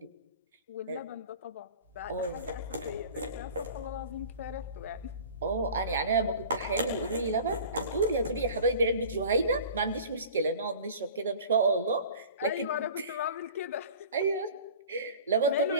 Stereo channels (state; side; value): inverted; both; correlation -0.42